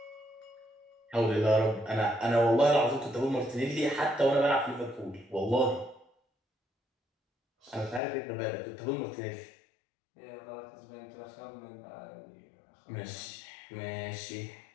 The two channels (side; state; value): right; drops out; at 8.0 s